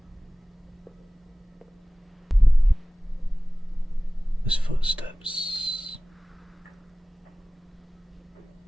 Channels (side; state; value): both; normal; correlation 0.97